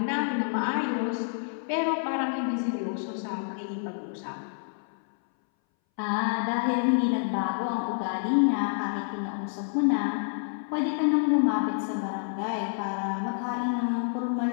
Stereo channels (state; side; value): silent; right; 59 dB below the other